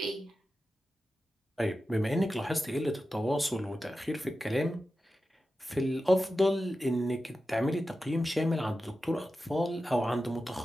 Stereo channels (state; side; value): normal; both; correlation 0.92